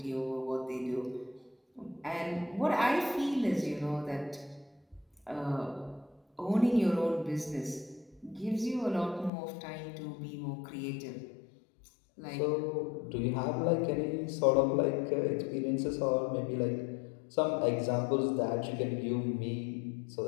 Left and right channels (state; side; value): drops out; right; at 9.3 s